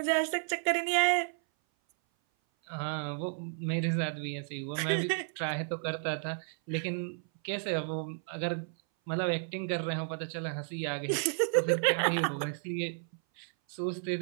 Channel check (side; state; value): left; silent; 56 dB below the other